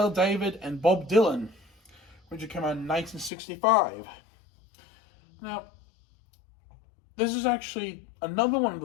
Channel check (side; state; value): right; drops out; at 3.3 s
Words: David, and Bob Dylan, which came out in 1965. Now, this is actually another one of